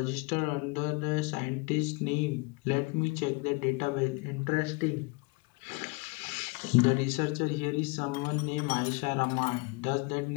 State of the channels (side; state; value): right; quieter; 28.4 dB